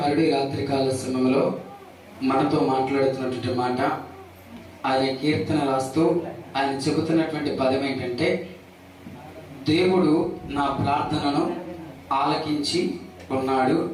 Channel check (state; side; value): identical; both; correlation 1.00